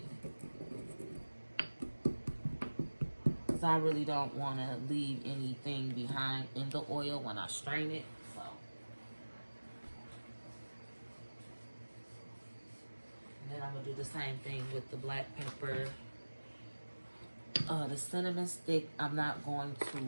Because I really don't want to leave anything behind in the oil when I strain it. So. And then I'm going to do the same thing with the black pepper. The cinnamon stick, I'm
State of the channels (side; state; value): both; inverted; correlation -1.00